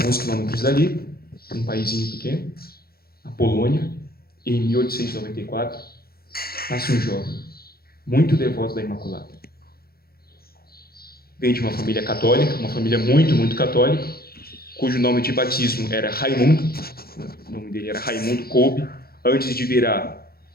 quilômetros dali, um paísinho pequeno, a Polônia, em 1894, nasce um jovem, muito devoto da Imaculada. Vem de uma família católica, uma família muito, muito católica, cujo nome de batismo era Raimundo. O nome dele era Raimundo Kolbe, antes de virar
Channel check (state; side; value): late; right; 0.44 ms